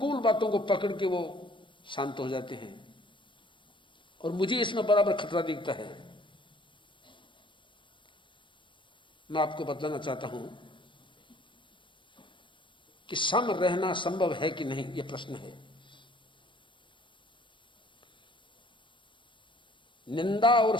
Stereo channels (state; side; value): late; right; 0.24 ms